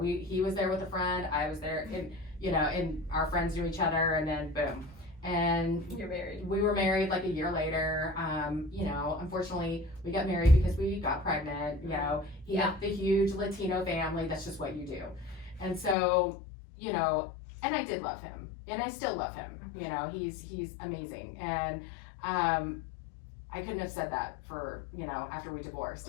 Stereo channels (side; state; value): right; drops out; at 16.0 s